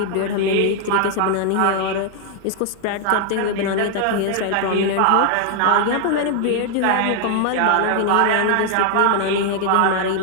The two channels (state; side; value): different; both; correlation 0.00